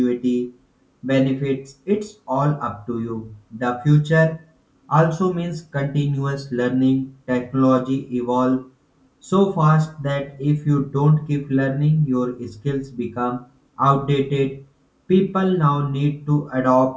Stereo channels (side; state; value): both; identical; correlation 1.00